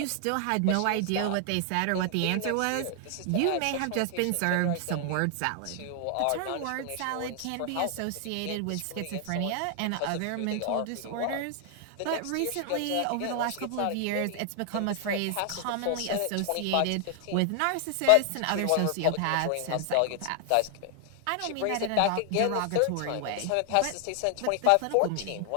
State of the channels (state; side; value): different; both; correlation 0.00